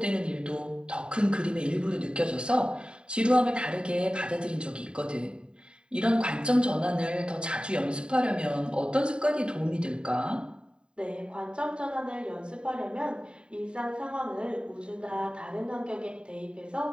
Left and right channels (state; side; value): late; left; 0.051 ms